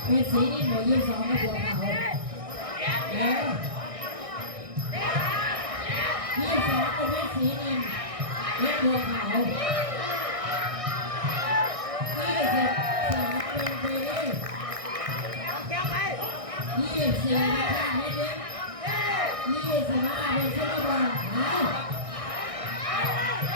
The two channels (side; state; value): left; late; 1.6 ms